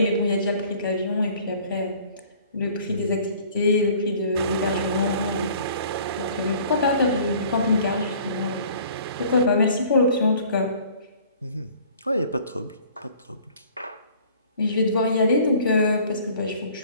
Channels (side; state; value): both; inverted; correlation -0.52